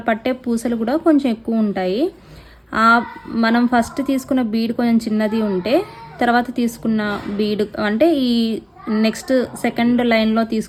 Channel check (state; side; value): identical; both; correlation 1.00